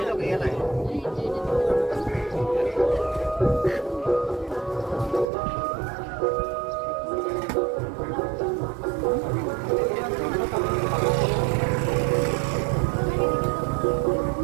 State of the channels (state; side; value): drops out; left; at 5.2 s